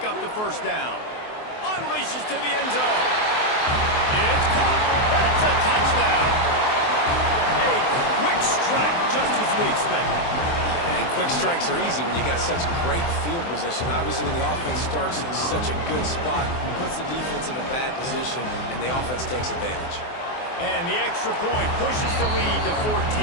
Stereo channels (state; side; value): late; right; 24 ms